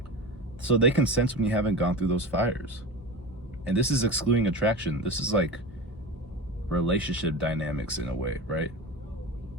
So they can sense when you haven't gone through those fires. And this is excluding attraction. This is like relationship dynamics in a way, right?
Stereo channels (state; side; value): normal; both; correlation 0.28